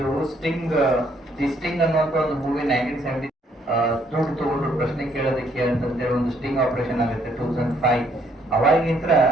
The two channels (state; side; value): normal; both; correlation 0.68